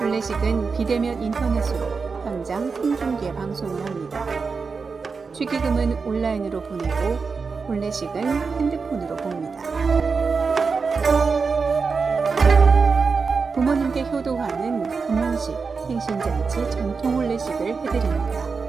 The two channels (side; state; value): left; quieter; 4.9 dB